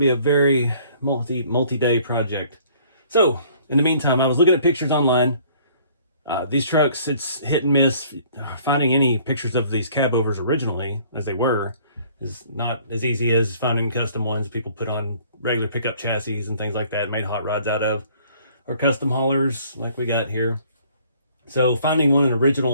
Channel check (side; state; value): both; inverted; correlation -0.57